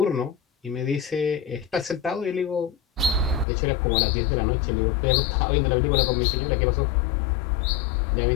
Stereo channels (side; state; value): right; drops out; at 3.5 s